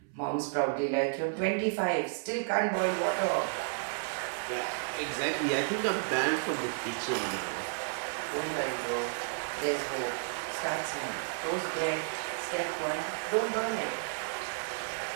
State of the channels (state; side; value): silent; left; 56 dB below the other